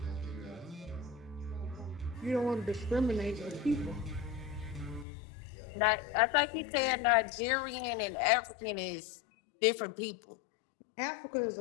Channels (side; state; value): right; drops out; at 5.1 s